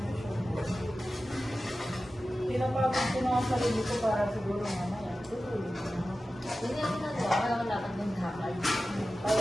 Pinapagod ko na ang sarili ko para siguro mamaya. Hindi ako nagawa. Kaya wala ka ng hakal.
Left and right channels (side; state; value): both; normal; correlation 0.94